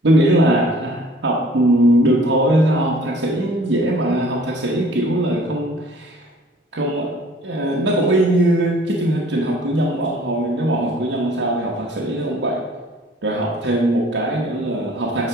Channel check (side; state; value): both; normal; correlation 0.52